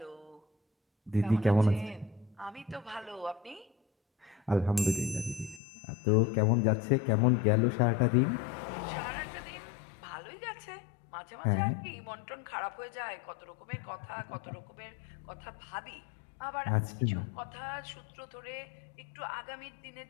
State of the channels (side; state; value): right; drops out; at 5.6 s